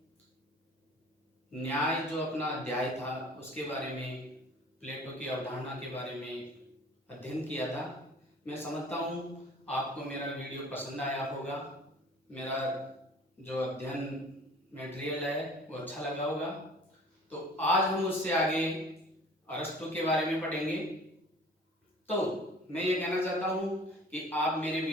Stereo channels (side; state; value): both; normal; correlation 0.47